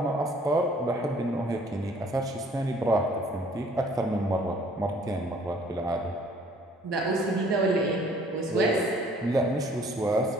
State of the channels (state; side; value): normal; both; correlation 0.57